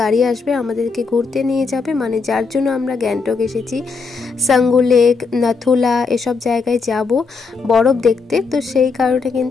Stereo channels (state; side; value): quieter; right; 4.6 dB